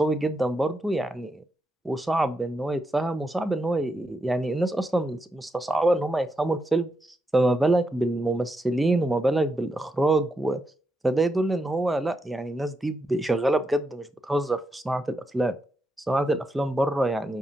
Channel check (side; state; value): both; normal; correlation 0.84